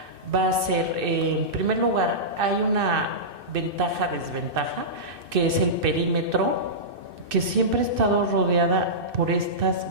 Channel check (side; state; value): left; late; 2.6 ms